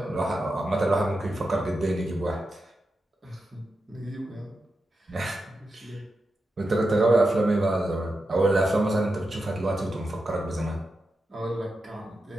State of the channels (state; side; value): normal; both; correlation 0.88